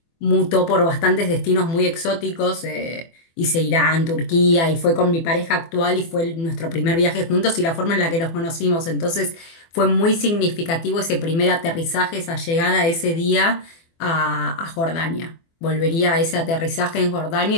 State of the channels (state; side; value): late; right; 24 ms